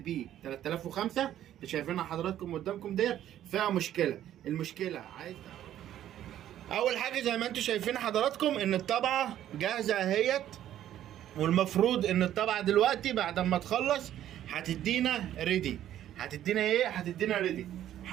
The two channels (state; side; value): quieter; left; 11.8 dB